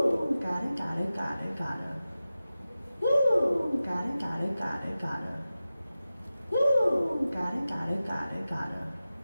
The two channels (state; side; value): inverted; both; correlation -0.95